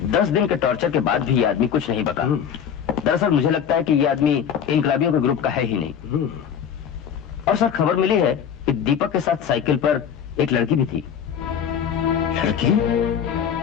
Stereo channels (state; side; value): quieter; right; 8.1 dB